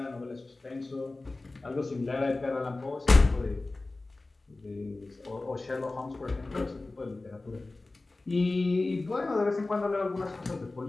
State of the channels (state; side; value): quieter; right; 3.2 dB